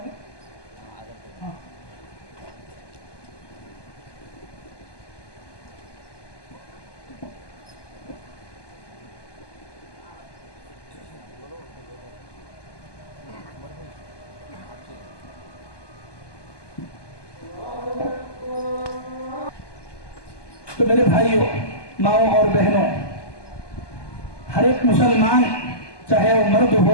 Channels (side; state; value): right; late; 1.2 ms